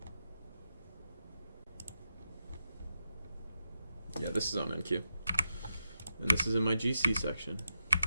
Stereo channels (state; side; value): inverted; both; correlation -0.87